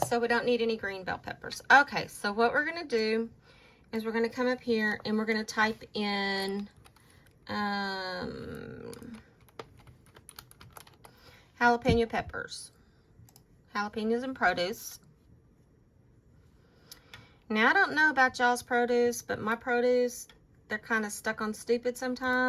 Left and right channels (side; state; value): both; identical; correlation 1.00